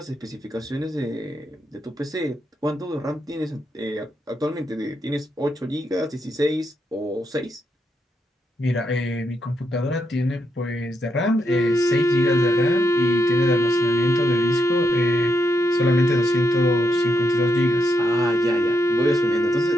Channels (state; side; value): normal; both; correlation 0.81